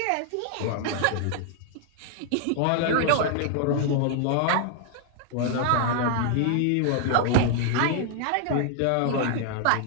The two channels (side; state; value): both; different; correlation 0.00